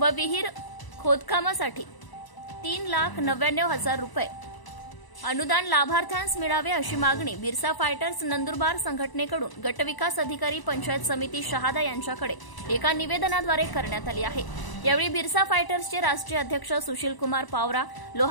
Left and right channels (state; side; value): late; right; 1.0 ms